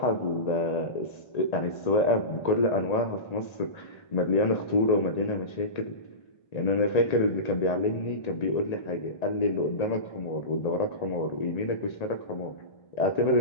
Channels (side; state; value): right; late; 1.9 ms